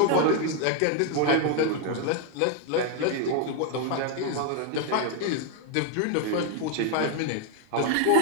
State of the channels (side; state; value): both; different; correlation 0.01